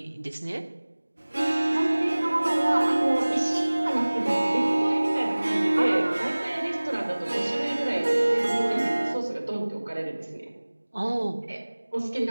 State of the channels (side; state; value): both; inverted; correlation -1.00